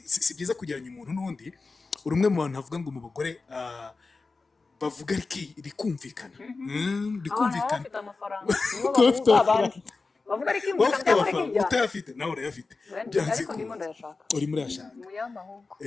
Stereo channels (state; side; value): quieter; right; 4.0 dB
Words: si byiza kugeranya umuntu n'undi urumwe mu bantu bavuga ngo mu bagore bavuga rikumvikana rikumvikana bafite amafaranga nibo abandi bavuga ari kimbuka cyangwa utayafite nawe urayafite byanze ko ndimo ndayashaka uri muri yashaka muyamba ahubwo